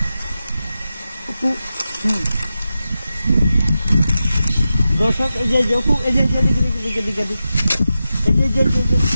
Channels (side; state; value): both; inverted; correlation -0.91